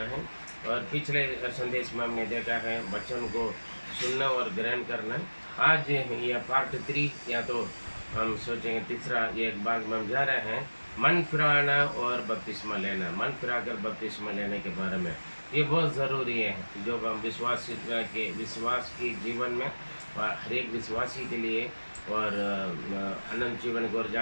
है। और पिछले संदेश में हमने देखा है वचन को सुनना और ग्रहण करना। आज यह पार्ट 3 या तो हम सोचेंगे तीसरा एक भाग में हम जा रहे हैं, मन फिराना और बपतिस्मा लेना। मन फिराकर बपतिस्मा लेने के बारे में ये बहुत ज़रूरी है, जो हम विश्वास की जीवन में हर एक विश्वासी के लिए और अनंत जीवन को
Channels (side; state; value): both; inverted; correlation -1.00